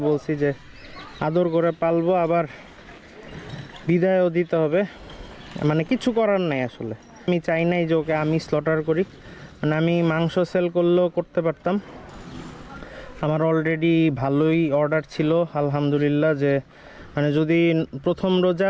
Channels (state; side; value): identical; both; correlation 1.00